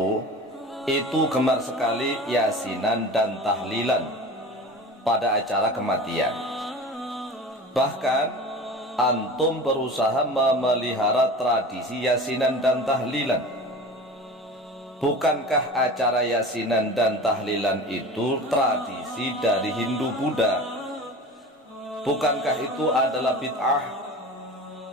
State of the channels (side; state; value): both; normal; correlation 0.35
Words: itu gemar sekali yasinan dan tahlilan pada acara kematian? Bahkan antum berusaha memelihara tradisi yasinan dan tahlilan. Bukankah acara yasinan dan tahlilan itu tradisi dari Hindu Buddha? Bukankah itu adalah bid'ah?